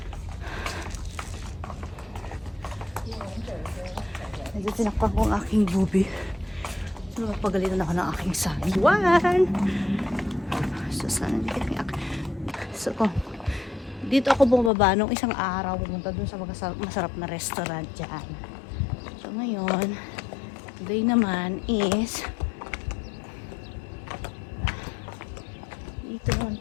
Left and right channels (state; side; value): drops out; right; at 14.7 s